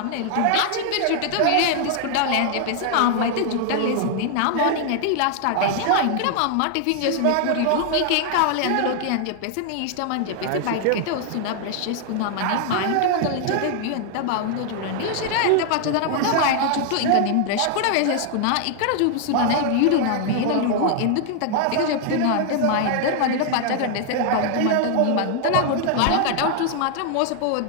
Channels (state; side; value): different; both; correlation 0.00